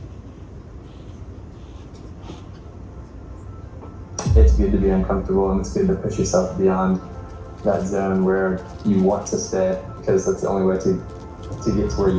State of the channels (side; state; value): both; identical; correlation 1.00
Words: It's good to be uncomfortable, and it's good to push yourself beyond that zone where you want to stay, because that's the only way to get to where you